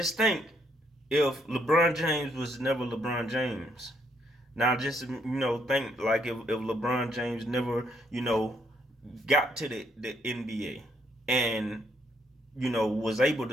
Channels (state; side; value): normal; both; correlation 0.72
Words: think if LeBron James was never LeBron James. Now, just think like if LeBron James never got to the NBA and was able